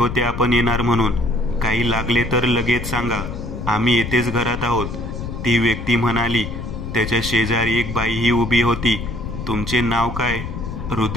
आपण येणार म्हणून. काही लागले तर लगेच सांगा, आम्ही येथेच घरात आहोत, ती व्यक्ती म्हणाली. त्याच्या शेजारी एक बाईही उभी होती. तुमचे नाव काय?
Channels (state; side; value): noise; left; rumble, 7 dB below the sound